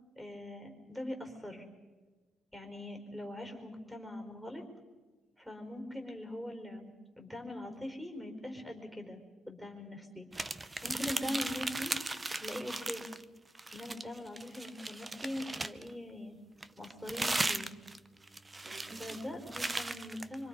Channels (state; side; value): normal; both; correlation 0.93